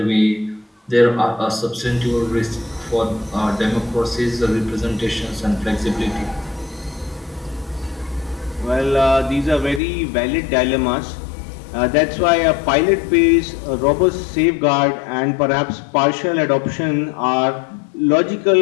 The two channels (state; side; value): drops out; right; at 9.8 s